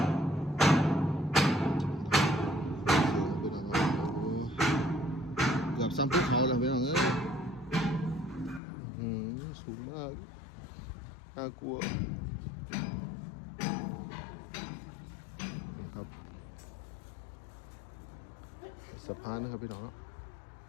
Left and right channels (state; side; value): drops out; right; at 8.6 s